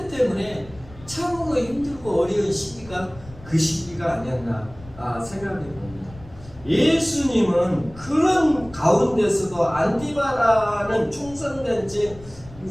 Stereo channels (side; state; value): left; noise; rumble, 19 dB below the sound